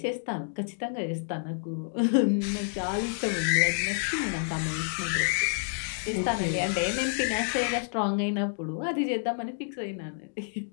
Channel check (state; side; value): silent; right; digital silence